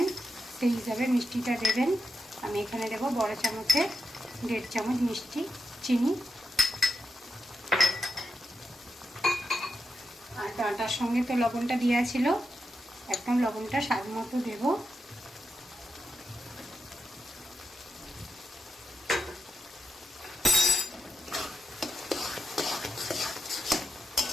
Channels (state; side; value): normal; both; correlation 0.86